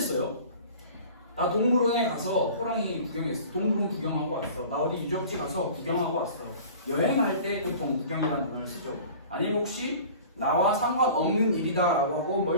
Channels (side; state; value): both; inverted; correlation -0.43